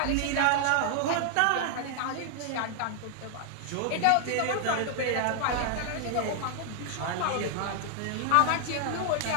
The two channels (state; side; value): different; both; correlation 0.00